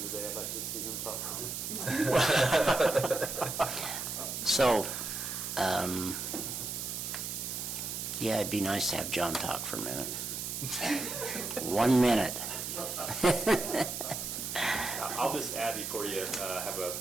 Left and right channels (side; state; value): right; noise; hiss, 4 dB below the sound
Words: today. I'd like to see him talk. So, yeah, it'd be nice to have John talk for a minute. 1 minute. I'll just add before you have